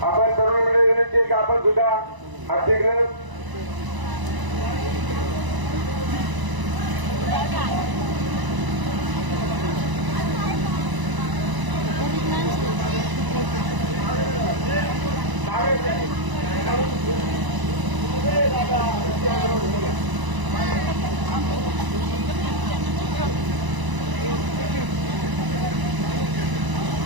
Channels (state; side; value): late; left; 1.0 ms